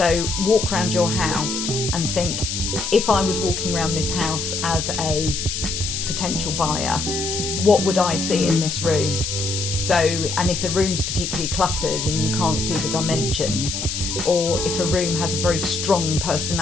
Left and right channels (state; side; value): noise; left; hiss, 3 dB below the sound